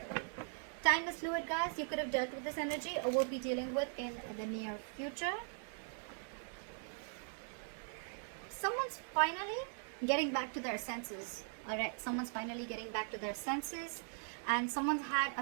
Time is fluid, guys. You could have dealt with this energy or will be dealing with in the near future. Someone's finally getting back to their senses. Alright, someone's finally getting back to their senses. And someone's had a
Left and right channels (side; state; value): left; silent; 51 dB below the other